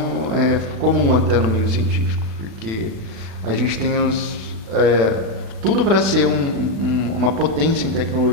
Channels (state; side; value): late; left; 36 ms